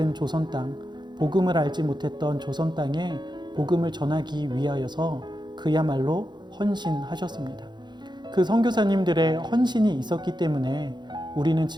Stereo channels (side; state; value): left; late; 0.21 ms